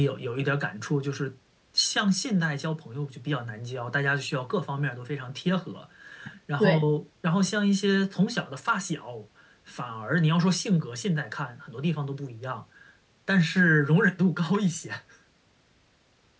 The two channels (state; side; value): identical; both; correlation 1.00